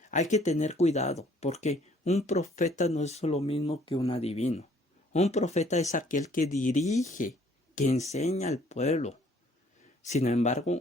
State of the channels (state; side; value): normal; both; correlation 0.60